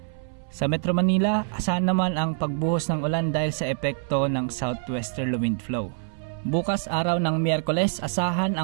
Sa Metro Manila, asahan naman ang pagbuhos ng ulan dahil sa epekto ng southwesterly wind flow. Bukas araw ng Miyerkules, asahan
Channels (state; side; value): silent; left; 61 dB below the other